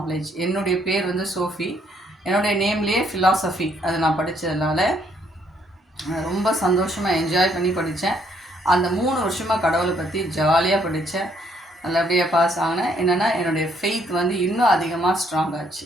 என்னுடைய பேர் வந்து சோஃபி. என்னுடைய நேம்லேயே ஃபிலாசபி அது நான் படித்ததுனால ரொம்ப சந்தோஷமாக என்ஜாய் பண்ணி படித்தேன். அந்த 3 வருஷமாக கடவுளை பற்றி ஜாலியாக படித்தேன். நல்லபடியாக பாஸ் ஆகினேன். என்னென்னா என்னுடைய ஃபெய்த் வந்து இன்னும் அதிகமாக ஸ்ட்ராங் ஆச்சு.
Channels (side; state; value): both; normal; correlation 0.69